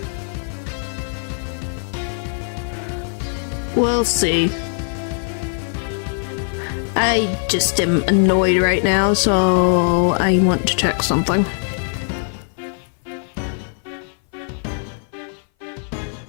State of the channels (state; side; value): silent; right; 58 dB below the other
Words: We'll see. I just am annoyed right now, so I want to check something.